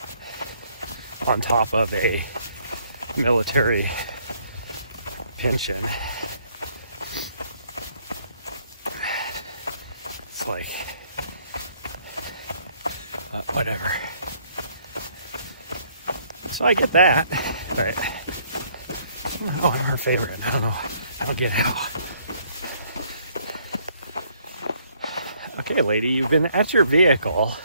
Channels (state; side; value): inverted; both; correlation -0.66